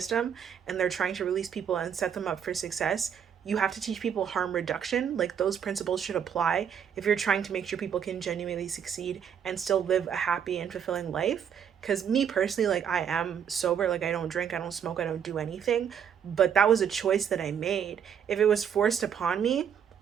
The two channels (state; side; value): quieter; left; 8.1 dB